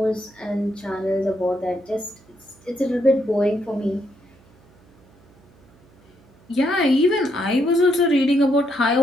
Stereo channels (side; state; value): right; noise; hum, 29 dB below the sound